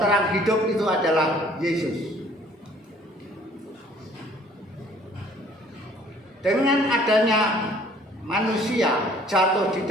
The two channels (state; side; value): normal; both; correlation 0.56